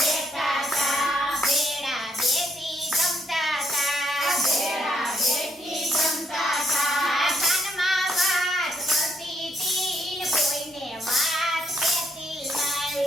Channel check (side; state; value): both; normal; correlation 0.72